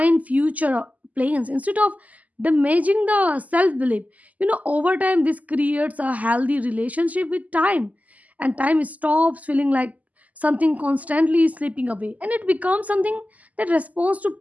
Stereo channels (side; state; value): left; late; 0.076 ms